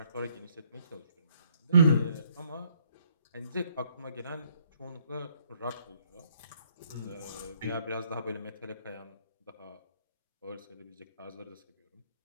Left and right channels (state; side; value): inverted; both; correlation -0.68